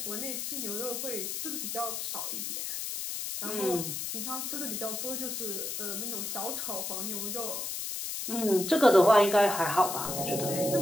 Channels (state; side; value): noise; left; hiss, 4 dB below the sound